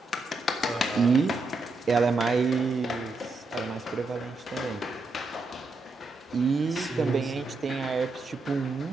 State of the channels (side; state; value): left; quieter; 3.3 dB